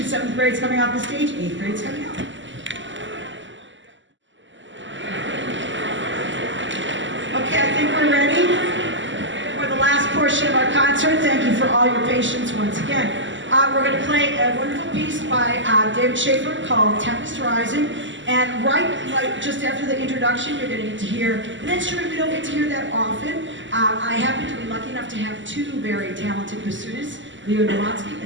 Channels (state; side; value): late; left; 0.54 ms